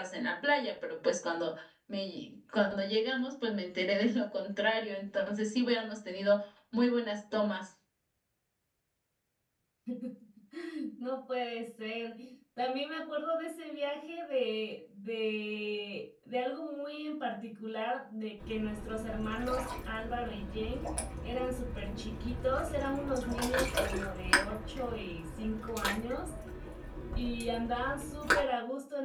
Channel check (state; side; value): identical; both; correlation 1.00